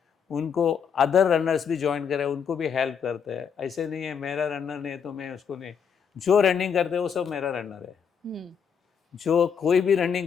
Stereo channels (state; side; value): quieter; right; 7.0 dB